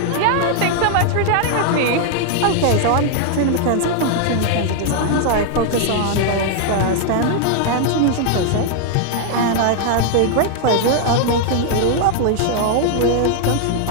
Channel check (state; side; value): different; both; correlation 0.00